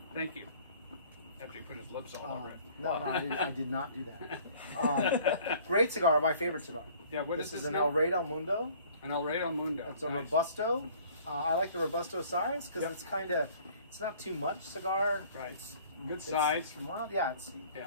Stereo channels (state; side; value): inverted; both; correlation -0.54